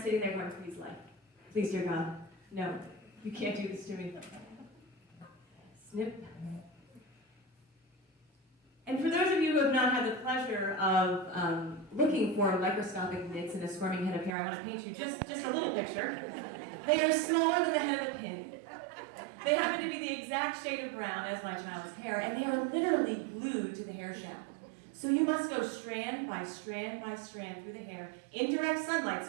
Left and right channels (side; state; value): left; drops out; at 14.3 s